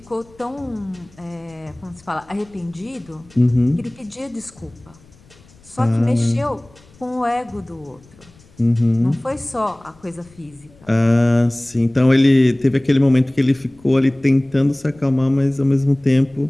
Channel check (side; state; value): left; noise; rumble, 27 dB below the sound